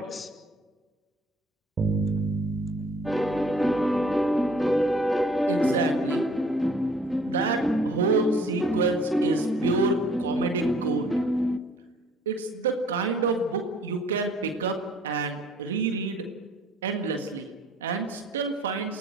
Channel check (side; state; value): both; normal; correlation 0.57